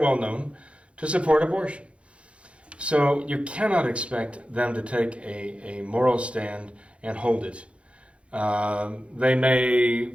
well known to support abortion. So you cannot expect them to take a moral stand and hold it. They may,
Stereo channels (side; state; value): left; late; 0.060 ms